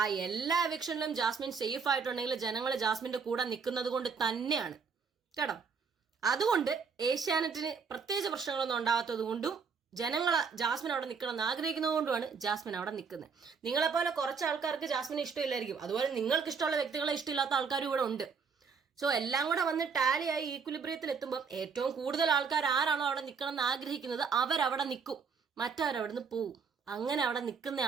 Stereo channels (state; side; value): quieter; left; 5.6 dB